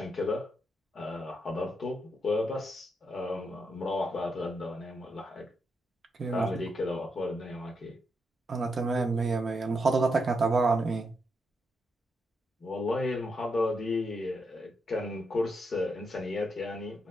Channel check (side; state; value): both; normal; correlation 0.81